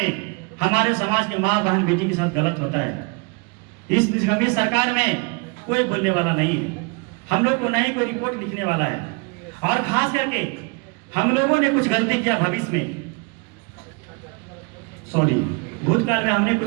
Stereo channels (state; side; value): quieter; left; 31.4 dB